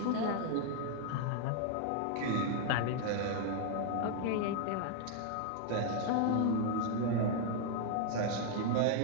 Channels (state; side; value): different; both; correlation 0.00